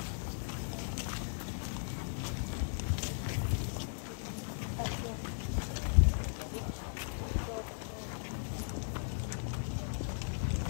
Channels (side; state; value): right; silent; 53 dB below the other